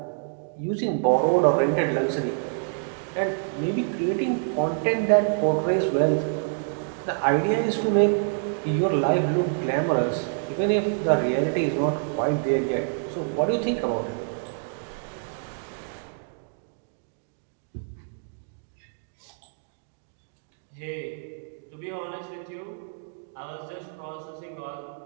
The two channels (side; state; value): left; silent; digital silence